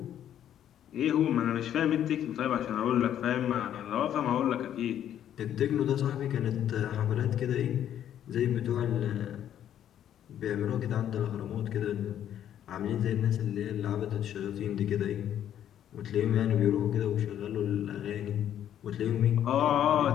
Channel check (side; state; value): right; quieter; 10.5 dB